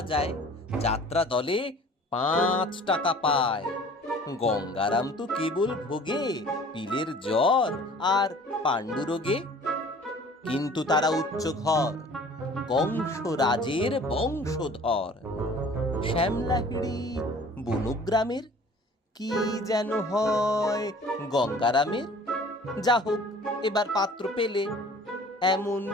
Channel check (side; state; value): both; normal; correlation 0.48